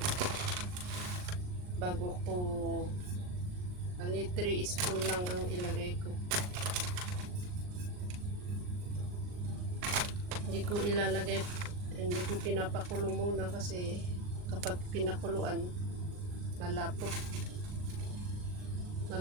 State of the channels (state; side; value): late; left; 39 ms